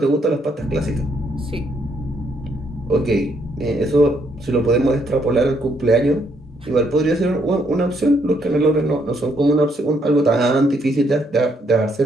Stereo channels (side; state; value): both; normal; correlation 0.72